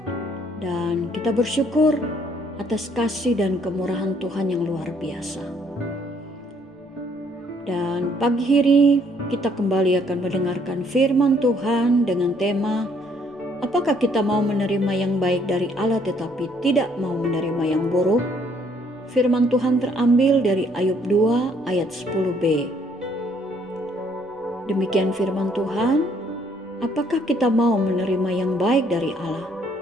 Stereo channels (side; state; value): both; normal; correlation 0.65